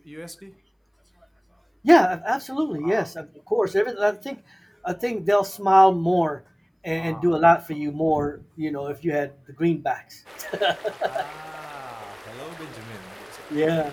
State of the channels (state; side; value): identical; both; correlation 1.00